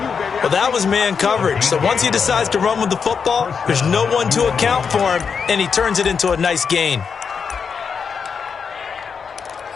Well, that was man coverage. So once he decides to run with the football, there's no one to account for him, and he turns it into a nice gain.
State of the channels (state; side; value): quieter; right; 6.1 dB